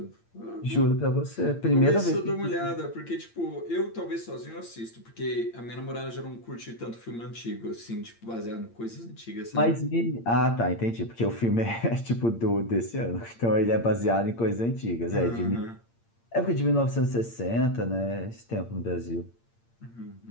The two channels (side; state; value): right; late; 8.7 ms